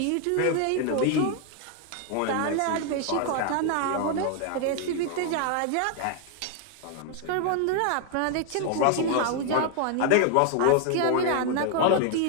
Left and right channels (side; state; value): both; different; correlation 0.00